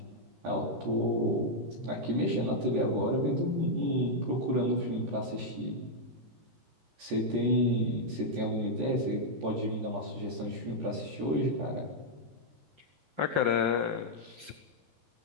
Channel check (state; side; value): late; left; 14 ms